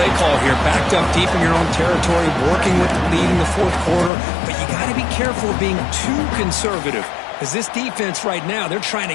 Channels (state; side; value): drops out; right; at 4.1 s